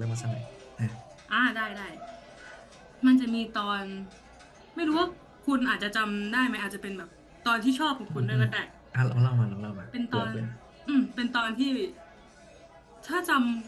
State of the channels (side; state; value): both; identical; correlation 1.00